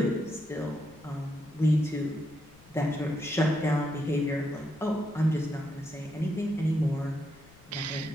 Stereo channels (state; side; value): noise; left; rumble, 25 dB below the sound